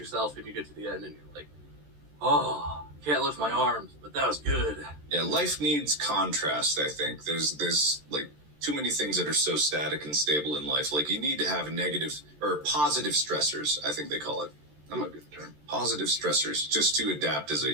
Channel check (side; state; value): left; late; 13 ms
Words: and you get to the end, and you're like, oh, can't lift my arms, but that was good. Yeah, life needs contrast, I think. There's like, too many things that are so static and stable in life. Like, you need to have negative or positive stressors, I think they call it. That might be the term. Positive stressors, just to adapt as